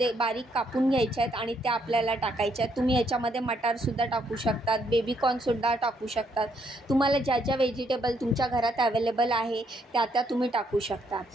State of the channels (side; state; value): both; normal; correlation 0.72